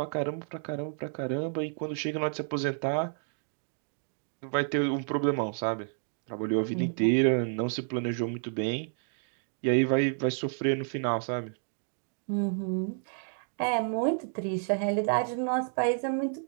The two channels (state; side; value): silent; left; digital silence